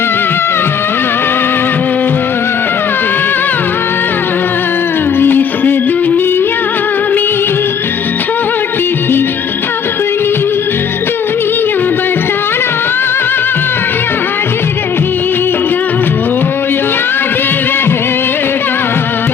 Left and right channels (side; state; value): right; quieter; 7.0 dB